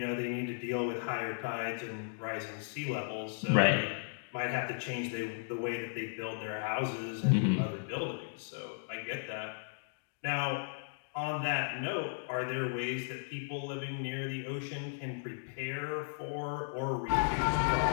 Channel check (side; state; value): right; silent; digital silence